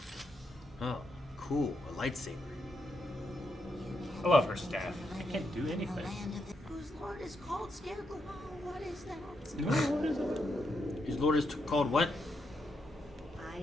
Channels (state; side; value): normal; both; correlation 0.81